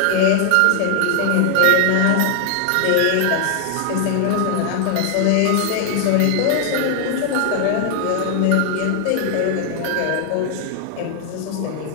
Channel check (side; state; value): both; different; correlation 0.00